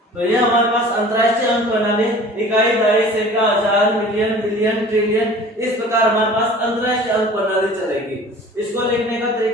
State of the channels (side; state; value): both; normal; correlation 0.44